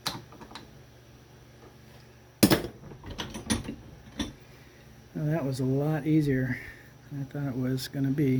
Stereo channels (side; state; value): both; identical; correlation 1.00